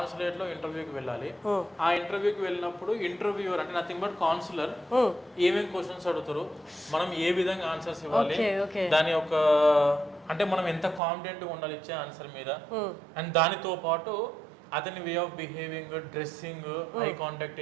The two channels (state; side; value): drops out; left; at 11.0 s